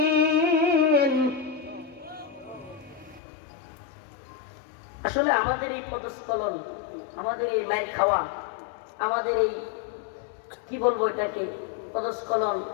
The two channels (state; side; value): drops out; right; at 3.2 s